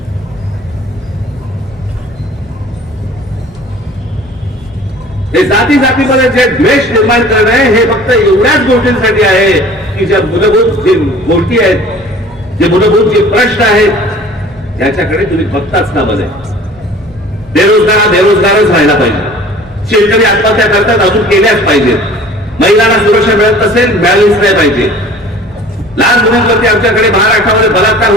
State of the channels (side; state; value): both; normal; correlation 0.47